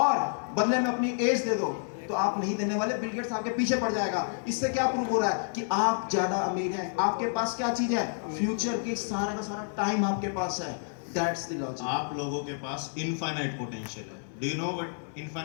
बदले में अपनी एज दे दो, तो आप नहीं देने वाले। बिल गेट्स आपके पीछे पड़ जाएगा। इससे क्या प्रूव हो रहा है कि आप ज्यादा अमीर हैं। आपके पास क्या चीज है? फ्यूचर की सारा का सारा टाइम आपके पास है। That's the logic. आप लोगों के पास इनफाइनाइट पोटेंशियल है। Do you know what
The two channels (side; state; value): right; silent; digital silence